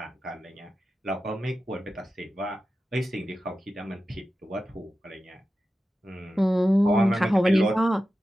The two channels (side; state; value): both; normal; correlation 0.92